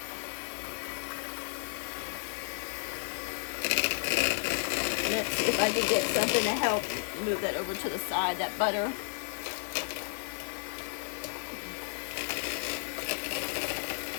Let's see if I can get something to help move that over to the side, that butter.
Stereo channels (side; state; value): right; silent; 55 dB below the other